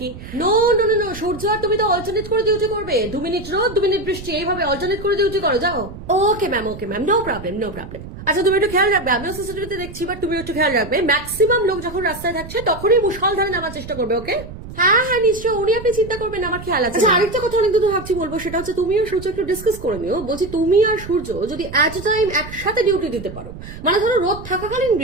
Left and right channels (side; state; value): right; noise; rumble, 13 dB below the sound